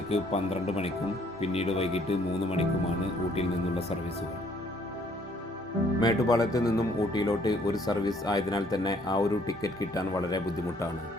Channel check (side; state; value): both; normal; correlation 0.63